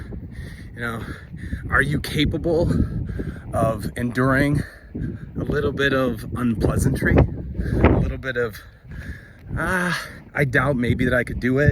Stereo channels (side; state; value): both; identical; correlation 1.00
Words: You know, are you capable of enduring a little bit of unpleasantry? A little bit of, I doubt maybe that I could do